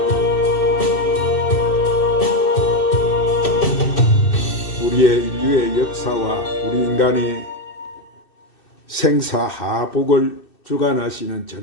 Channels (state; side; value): late; right; 2.6 ms